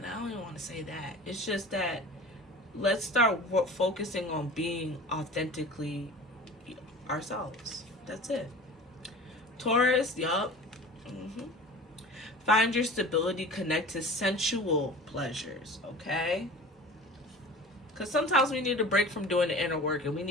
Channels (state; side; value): normal; both; correlation 0.39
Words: want to say that. It's just that let's start focusing on being authentically ourselves. That's it. Taurus, yup. Find your stability, connect to sensual pleasures, okay? Because sometimes we need a break from doing the inner work, and we